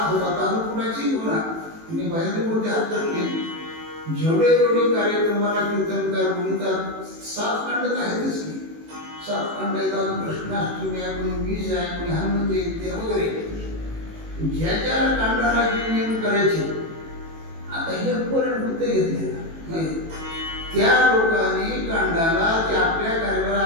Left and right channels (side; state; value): left; late; 18 ms